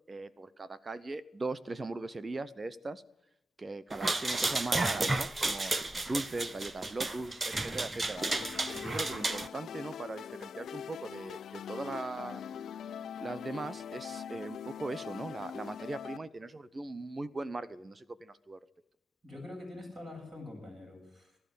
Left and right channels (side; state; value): both; normal; correlation 0.89